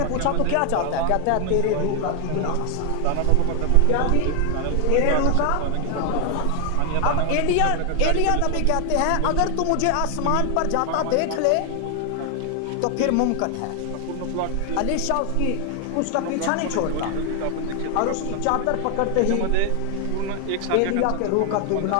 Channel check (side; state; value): both; different; correlation 0.00